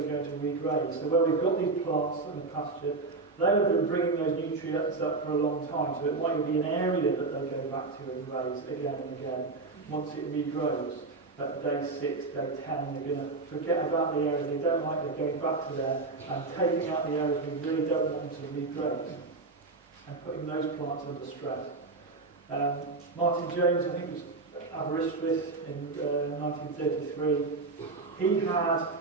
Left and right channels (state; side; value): quieter; left; 3.7 dB